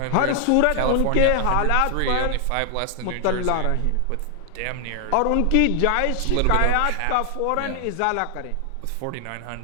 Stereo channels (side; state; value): both; different; correlation 0.00